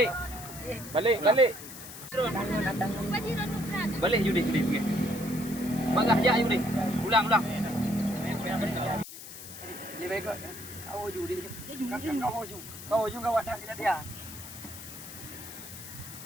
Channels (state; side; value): noise; left; hiss, 13 dB below the sound